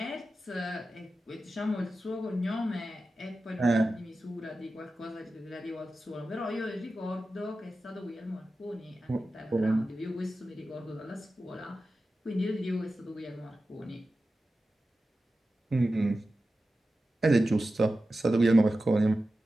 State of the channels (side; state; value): both; normal; correlation 0.93